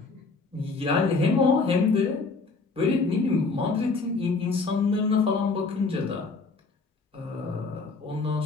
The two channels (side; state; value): right; quieter; 4.0 dB